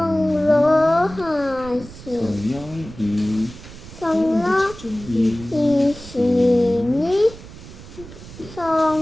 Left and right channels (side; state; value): right; noise; rumble, 16 dB below the sound